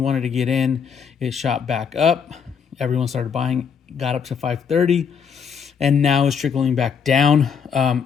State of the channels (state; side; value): quieter; right; 6.7 dB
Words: wanted to get in. It shot back up. Everyone started buying, got up to $530, and now it's trickling back down.